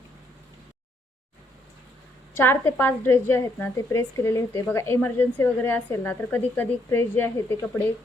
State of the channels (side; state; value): both; normal; correlation 0.72